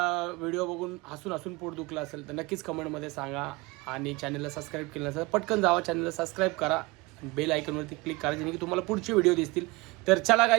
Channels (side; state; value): left; quieter; 23.5 dB